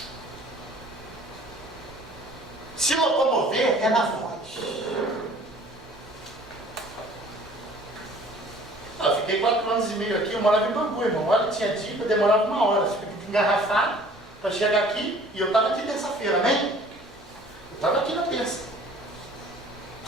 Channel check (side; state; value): both; normal; correlation 0.51